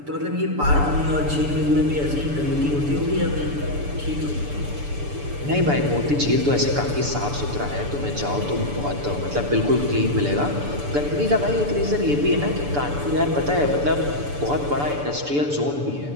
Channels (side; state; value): left; late; 6.9 ms